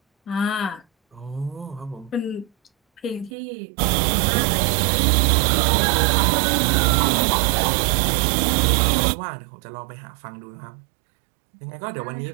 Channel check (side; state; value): left; drops out; at 3.3 s